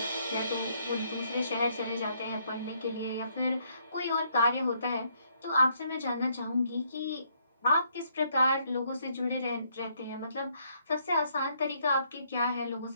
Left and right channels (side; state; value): both; inverted; correlation -0.70